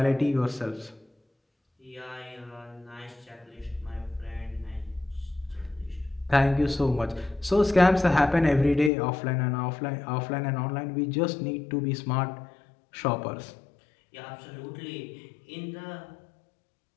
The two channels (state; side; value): drops out; right; at 8.9 s